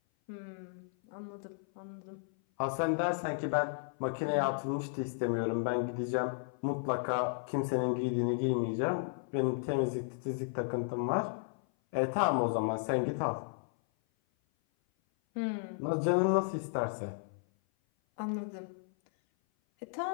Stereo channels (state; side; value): silent; right; 55 dB below the other